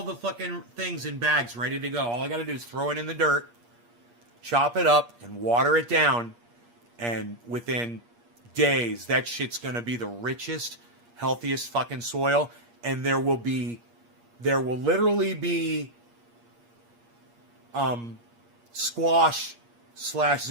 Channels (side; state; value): left; late; 8.5 ms